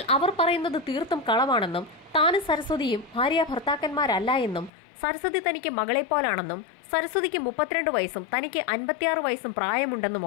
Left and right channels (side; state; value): right; drops out; at 4.7 s